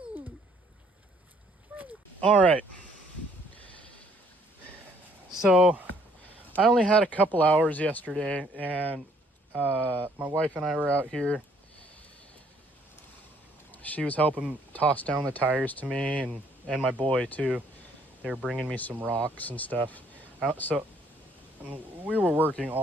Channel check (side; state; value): both; normal; correlation 0.64